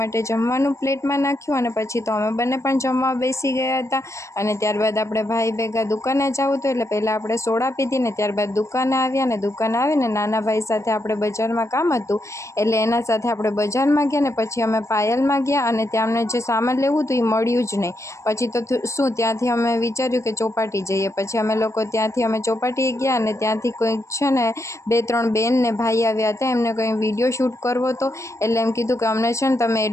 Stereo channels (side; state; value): right; late; 0.14 ms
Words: જમવાનું પ્લેટમાં નાખ્યું અને પછી તો અમે બંને પણ જમવા બેસી ગયા હતા અને ત્યારબાદ આપણે ભાઈ ભેગા દુકાને જવું હતું એટલે પહેલાં આપણે સોડા પીધી ને ત્યારબાદ દુકાને આવ્યા અને દુકાને આવીને નાના ભાઈ સાથે આપણે બજારમાં કામ હતું એટલે એના સાથે આપણે બજારમાં ગયા ને પછી અમે પાયલમાં ગયા અને ત્યાં અમને જે સામાન લેવું હતું એ મળ્યું જ નહીં। પછી તો શું ત્યાંથી અમે વિચાર્યું કે ચોપાટી જઈએ, પછી અમે લોકો ત્યાંથી અમે ચોપાટીએ ગયા અને ત્યાંથી કોઈક છે ને 2-3 બેન ને ભાઈ આવ્યા હતા, એમને કંઈ વિડીયો શૂટ કરવો હતો એટલે એમ કીધું કે અમને છે ને તમે